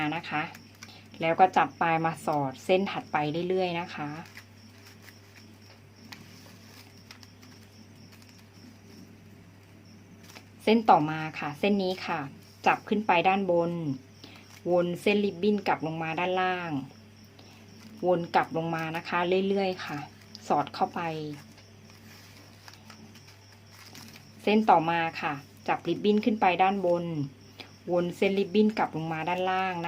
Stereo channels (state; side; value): identical; both; correlation 1.00